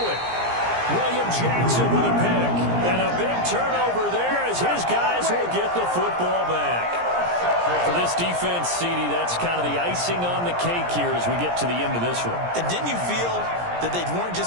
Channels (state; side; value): late; left; 17 ms